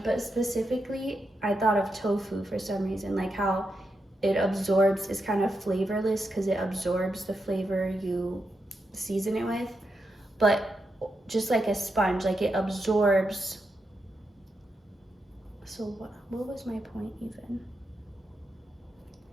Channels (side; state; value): both; normal; correlation 0.86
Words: but specifically I thought of tofu for some reason, like how it absorbs, is kind of flavorless because it absorbs the flavor you season it with, but just like a sponge, like it absorbs. So what was my point even?